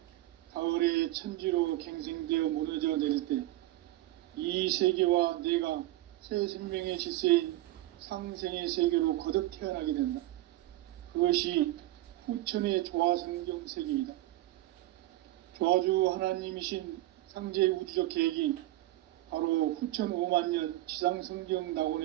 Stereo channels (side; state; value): left; quieter; 16.5 dB